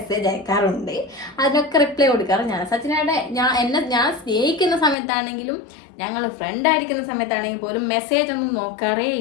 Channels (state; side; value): drops out; right; at 5.0 s